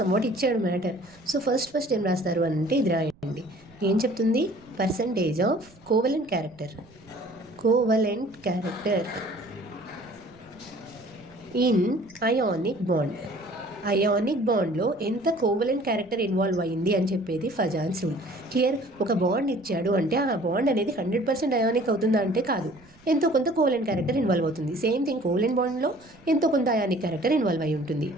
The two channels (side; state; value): right; noise; rumble, 28 dB below the sound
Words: ఇచ్చాడు మ్యాటర్. సో ఫస్ట్ ఏం రాస్తారు అంటే ఇది రాయండి. ఏం చెప్తుంది? Percentage of covalent character in ionic bond. Ionic బాండ్లో ఎంత కోవలెంట్ క్యారెక్టర్ ఇన్వాల్వ్ అయ్యింది అని చెప్పేది ఫజాన్స్ రూల్. క్లియర్? ఒక బాండ్ ఇచ్చాడు అంటే ఆ బాండ్ అనేది 100% అయానిక్ అవుతుందా అంటే కాదు, ఎంతో కొంత కోవలెంట్ క్యారెక్టర్ ఇన్వాల్వ్ అవుతుంది. సేమ్ థింగ్ కోవలెంట్ బాండ్లో ఎంతో కొంత అయానిక్ క్యారెక్టర్ ఇన్వాల్వ్ అయి ఉంటుంది.